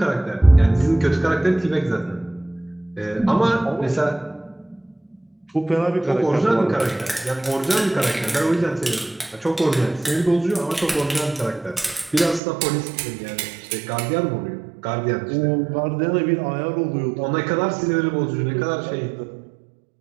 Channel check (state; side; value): drops out; left; at 12.4 s